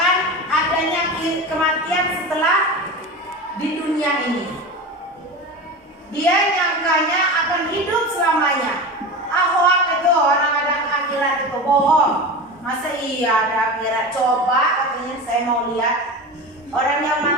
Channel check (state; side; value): normal; both; correlation 0.28